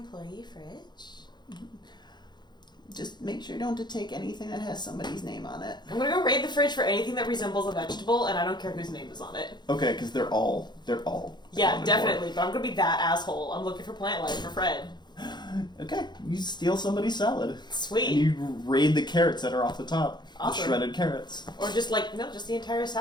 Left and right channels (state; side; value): late; right; 0.21 ms